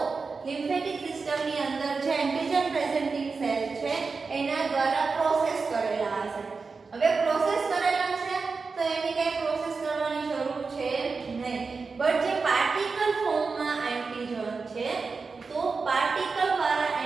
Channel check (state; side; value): quieter; left; 4.5 dB